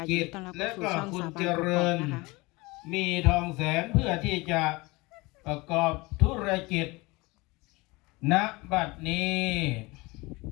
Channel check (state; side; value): quieter; right; 23.7 dB